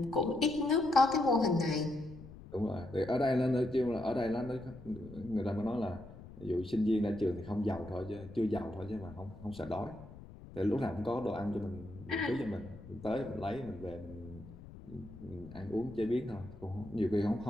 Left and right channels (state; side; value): noise; left; rumble, 16 dB below the sound